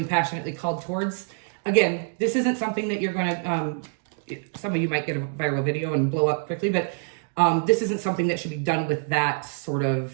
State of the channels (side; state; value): left; silent; 61 dB below the other